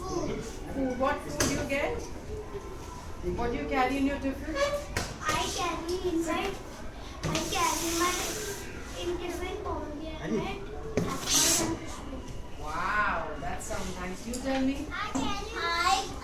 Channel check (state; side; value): identical; both; correlation 1.00